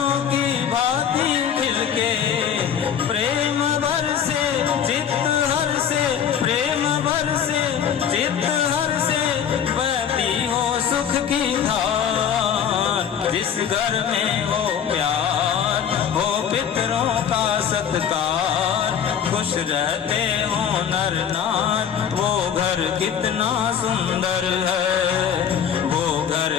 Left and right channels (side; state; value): right; quieter; 8.5 dB